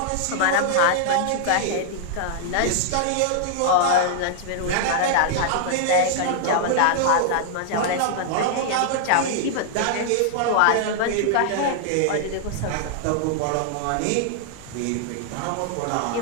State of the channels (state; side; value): different; both; correlation -0.01